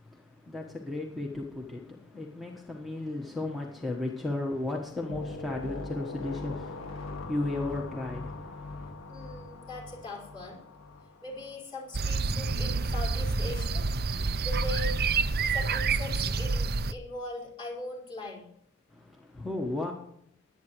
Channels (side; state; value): both; normal; correlation 0.66